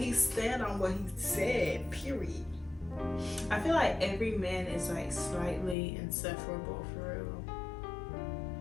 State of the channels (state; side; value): drops out; right; at 5.8 s